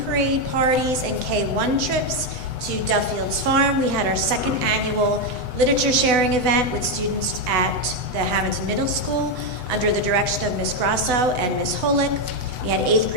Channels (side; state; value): left; late; 8.0 ms